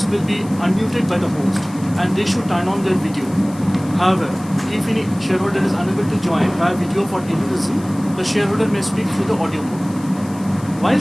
will be unmuted by the host and they should turn on their video. However, if any shareholder is unable to join via video for any reason, the shareholder may speak through the audio mode. While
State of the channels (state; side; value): noise; left; hiss, 21 dB below the sound